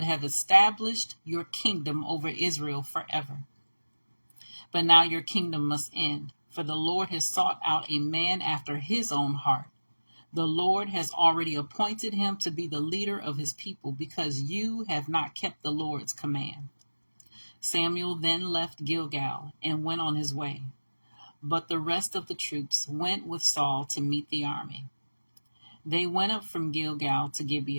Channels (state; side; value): inverted; both; correlation -1.00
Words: have established your kingdom over Israel forever. But now your kingdom must end, for the Lord has sought out a man after his own heart. The Lord has already appointed him to be the leader of his people because you have not kept the Lord's command." Samuel then left Gilgal and went on his way, but the rest of the troops went with Saul to meet the army. They went up from Gilgal to